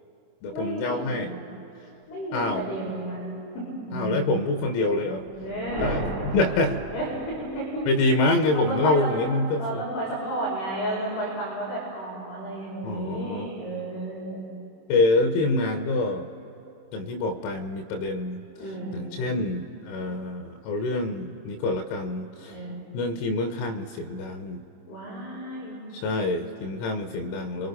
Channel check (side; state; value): right; late; 27 ms